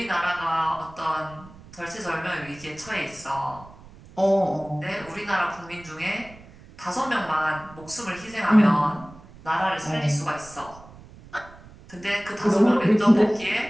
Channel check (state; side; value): noise; right; rumble, 21 dB below the sound